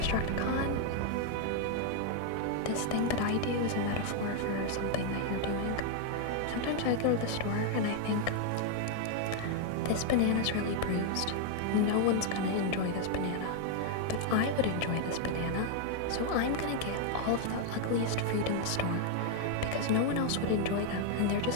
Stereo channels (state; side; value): different; both; correlation 0.00